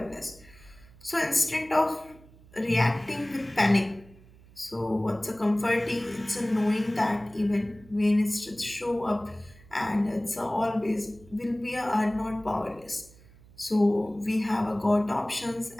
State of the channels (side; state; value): right; noise; hum, 24 dB below the sound